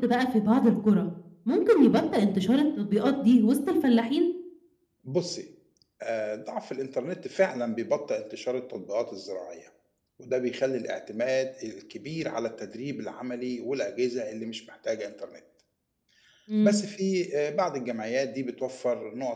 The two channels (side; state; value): both; identical; correlation 1.00